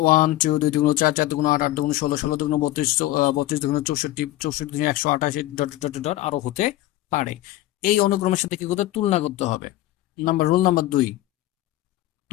1 2 2 4 4 8 8 16 32 32 64 64 128 ডট ডট ডট ডট আরো হতে পারে। এই অনুক্রমের সাথে কি করতে তুলনা করতে হবে। রুল নাম্বার 2,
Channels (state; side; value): quieter; right; 15.7 dB